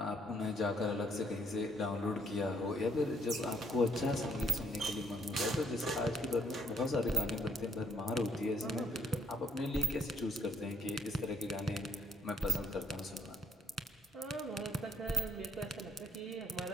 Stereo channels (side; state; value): both; normal; correlation 0.67